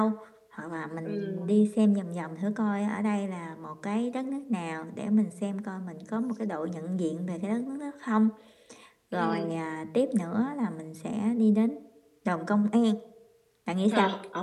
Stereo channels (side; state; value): both; identical; correlation 1.00